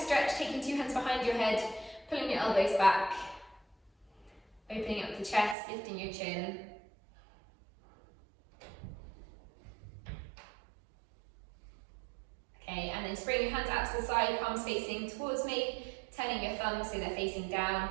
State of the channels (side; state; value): left; drops out; at 5.6 s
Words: stretch, taking 2 hands behind your head, pulling your elbows back, opening up the chest, lifting your chin. Okay, and then spring your hands out to the side, palms facing towards me, turning your thumbs so they're facing down,